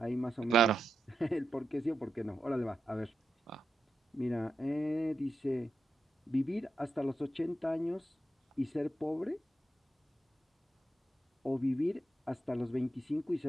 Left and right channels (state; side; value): normal; both; correlation 0.87